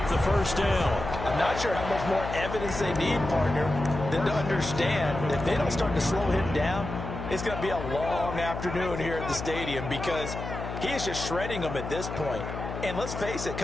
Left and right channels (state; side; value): noise; left; hum, 7 dB below the sound